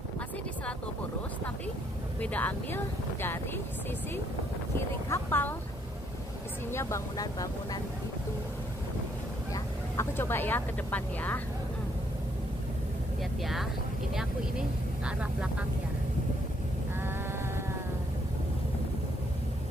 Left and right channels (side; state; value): both; normal; correlation 0.70